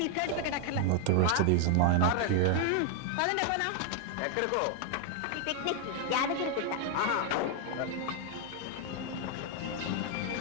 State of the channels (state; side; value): different; both; correlation 0.00